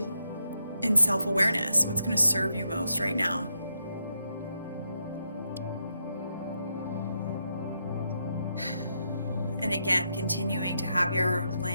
in self-awareness. What's going to serve you most right now? And again, continuing to have your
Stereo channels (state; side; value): inverted; both; correlation -0.82